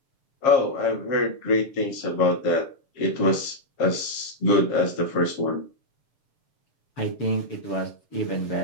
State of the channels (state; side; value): late; right; 7.4 ms